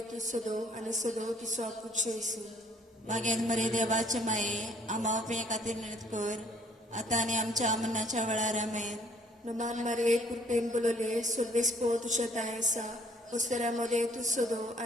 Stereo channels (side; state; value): both; normal; correlation 0.60